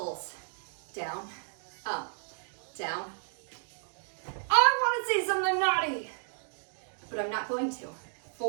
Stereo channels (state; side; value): silent; left; digital silence